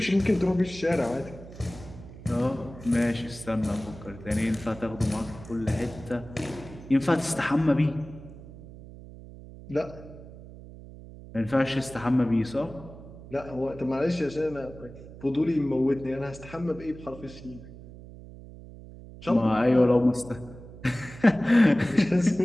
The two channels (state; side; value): noise; right; hum, 16 dB below the sound